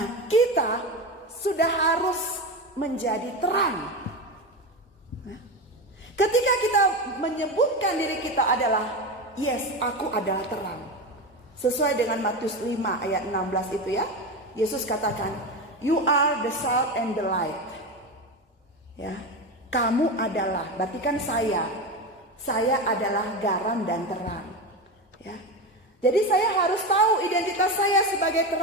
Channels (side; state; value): both; normal; correlation 0.20